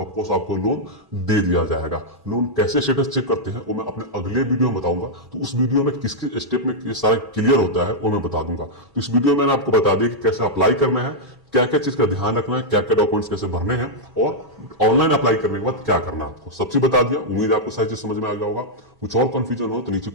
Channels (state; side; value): normal; both; correlation -0.05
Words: ऑफकोर्स आपको लोन दे दिया जाएगा। लोन कैसे स्टेटस चेक करते हैं वो मैं अपने अगले वीडियो में बताऊंगा। तो उस वीडियो में किसके स्टेप में ये सारा क्लियर होता है वो मैं बता दूंगा। तो इस वीडियो में मैंने आपको बता दिया कि कैसे अप्लाई करना है, क्या क्या चीज का ध्यान रखना है, क्या क्या डॉक्यूमेंट्स कैसे भरने हैं, और ऑनलाइन अप्लाई करने के बाद क्या करना है आपको, सब चीज बता दिया। उम्मीद है आपको सारी चीज समझ में आ गया होगा। कुछ और कंफ्यूजन हो तो नीचे